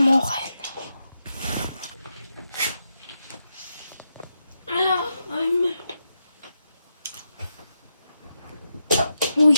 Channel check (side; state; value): both; inverted; correlation -0.85